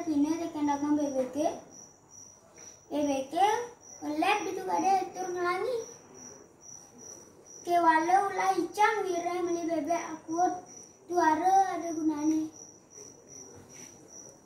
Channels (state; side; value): identical; both; correlation 1.00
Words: pina tekan dagang bebeke. Bebeke ngelep itu kada tur ngelangi. Kewala ulah icang wireh meli bebek akut tuara ada gunane.